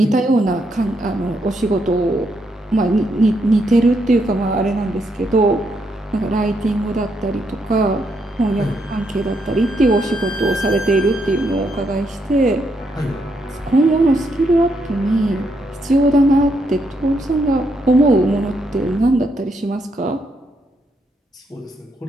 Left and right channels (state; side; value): normal; both; correlation 0.78